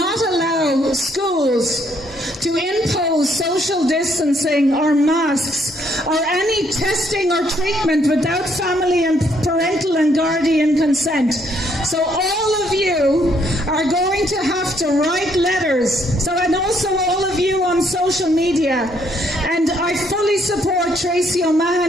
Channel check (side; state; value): both; normal; correlation 0.70